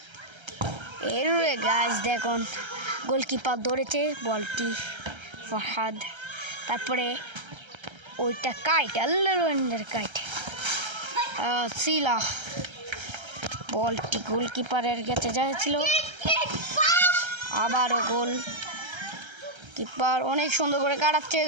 এরপরে গাইস দেখুন, গোলকিপার ধরেছে বলটি ফরহাদ, তারপরে ওইটা কাইট আল্লাহর কাইট সিলা বলটি গোলকিপারের কাছে যাচ্ছিল, আবারও গোল। কিপার অনেক সুন্দর করে কাটাচ্ছে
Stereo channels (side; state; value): left; late; 1.3 ms